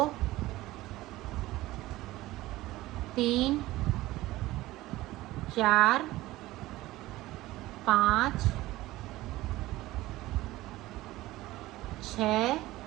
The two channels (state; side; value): quieter; left; 17.5 dB